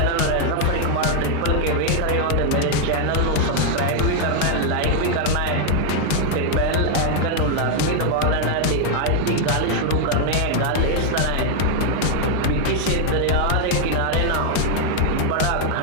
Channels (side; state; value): both; different; correlation 0.00